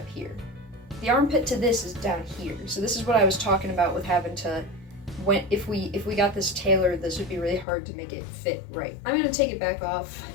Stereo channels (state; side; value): drops out; right; at 7.7 s